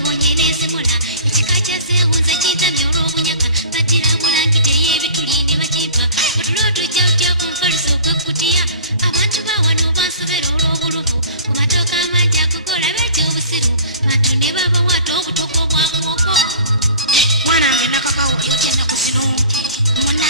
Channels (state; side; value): inverted; both; correlation -0.42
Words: n'ezimula ekika kyazeewunza kintamya olw'obunyaka baddira bulangiti ey'ebituli ne bakimpa otulo otujja otya ku nfaluso ogw'ekkutiya abantu bawano bansobera olw'obuluvu ku matooka amangi agogola beetya obusiru bantu ne babawaata obutoko obwa muwogo mwanange nakakawo yotya ennaku zino